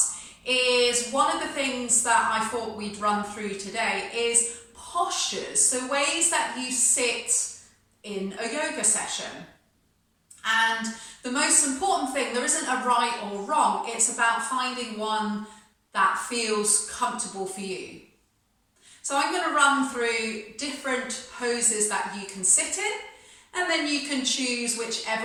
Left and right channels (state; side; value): identical; both; correlation 1.00